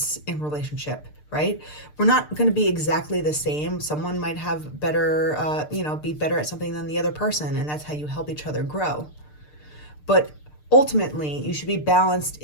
in relationship, right? We're not going to be exactly the same. Someone might have better, be better at something than the other person, and that's how you help each other grow. But ultimately, you should be balanced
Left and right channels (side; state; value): right; late; 6.7 ms